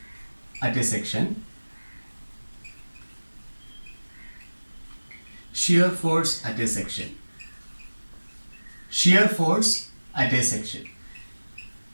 at a section, shear force at a section. Shear force at a section.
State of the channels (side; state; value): both; inverted; correlation -1.00